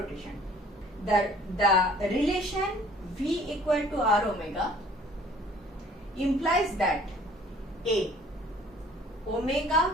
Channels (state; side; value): normal; both; correlation 0.54